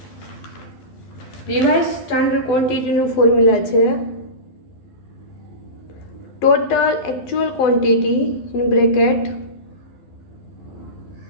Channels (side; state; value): right; late; 12 ms